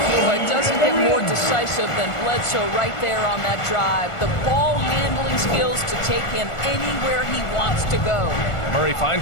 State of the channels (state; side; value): late; right; 1.4 ms